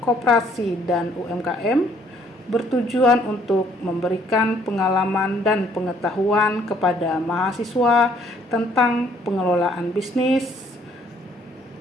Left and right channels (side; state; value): both; normal; correlation 0.64